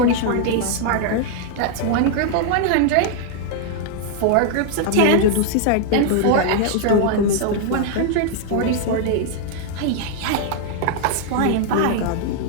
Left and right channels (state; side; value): different; both; correlation 0.00